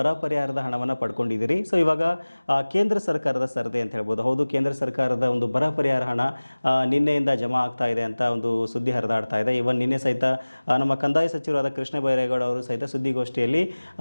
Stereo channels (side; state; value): both; inverted; correlation -1.00